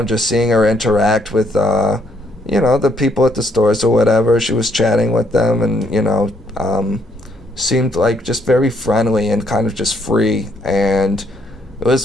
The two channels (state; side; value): normal; both; correlation 0.71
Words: just seeing her interact with, you know, the people at the stores or whatever, she was chatting with them and, you know, seemed like just very friendly and kind of just free. And it was